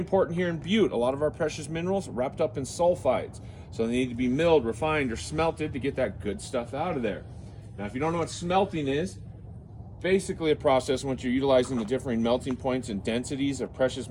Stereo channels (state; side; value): identical; both; correlation 1.00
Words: here in Butte. A lot of our precious minerals are wrapped up in sulfides. So they need to be milled, refined, or smelted to get that good stuff out of there. Now, if you don't know what smelting is, basically a process in which you're utilizing the differing melting points and densities of precious